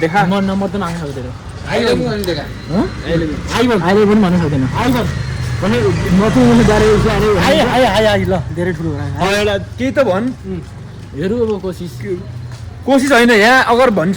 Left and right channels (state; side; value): identical; both; correlation 1.00